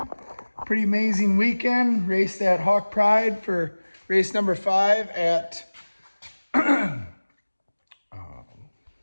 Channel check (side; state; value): both; inverted; correlation -1.00